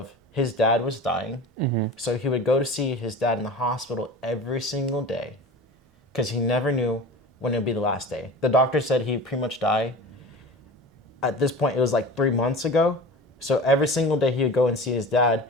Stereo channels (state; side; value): normal; both; correlation 0.35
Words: his dad was dying, so he would go to see his dad in the hospital every single day because he never knew when it would be the last day. The doctor said he'd pretty much die. At this point, it was like 3 months ago. So every single day he would go and see his dad,